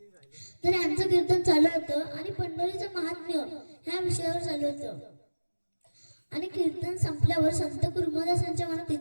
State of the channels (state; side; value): inverted; both; correlation -1.00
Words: तर यांचं कीर्तन चालू होतं आणि पंढरीचं महात्म्य ह्या विषयावर चालू होतं. आणि कीर्तन संपल्यावर संत कुर्मदासांच्या मनात